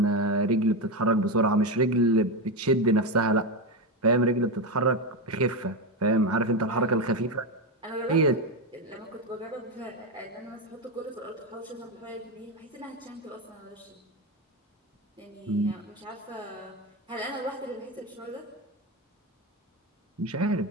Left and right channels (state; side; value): normal; both; correlation 0.11